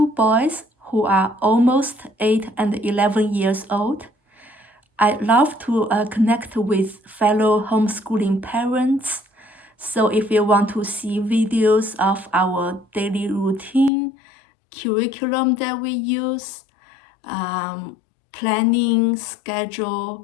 boys who are almost 8 and 11 years old. I love to connect with fellow homeschooling parents. So if you want to see videos of our daily routine, curriculum that we use, planning,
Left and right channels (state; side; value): drops out; right; at 13.9 s